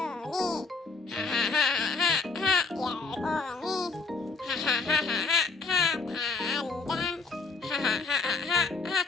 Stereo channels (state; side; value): quieter; right; 4.2 dB